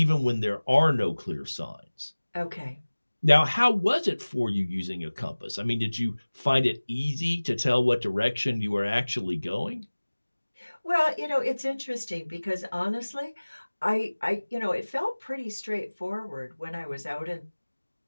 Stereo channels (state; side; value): inverted; both; correlation -1.00